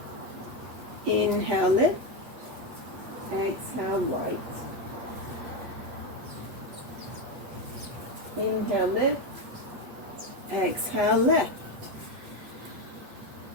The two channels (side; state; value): left; late; 8.4 ms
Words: Inhale, lift, exhale, right. Inhale, lift, exhale, left.